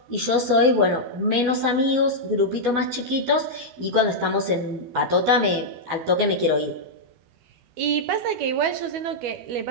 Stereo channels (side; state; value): left; late; 12 ms